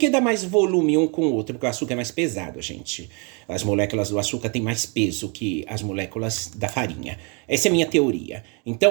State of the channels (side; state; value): left; quieter; 33.4 dB